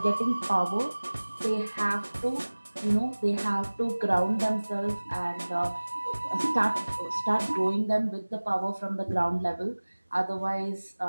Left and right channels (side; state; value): both; inverted; correlation -1.00